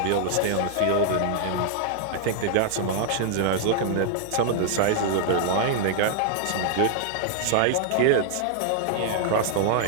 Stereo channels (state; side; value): different; both; correlation 0.00